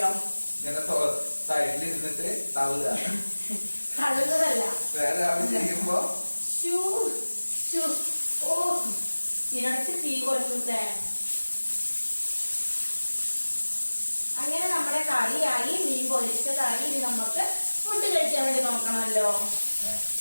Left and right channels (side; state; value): both; inverted; correlation -1.00